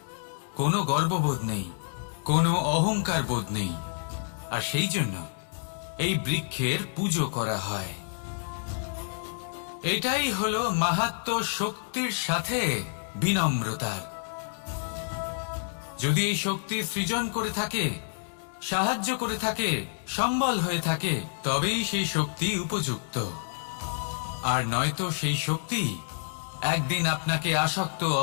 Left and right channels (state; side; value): silent; right; digital silence